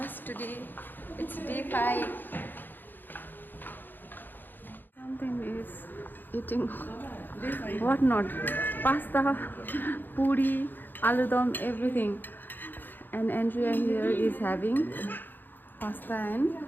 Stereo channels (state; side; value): late; right; 0.091 ms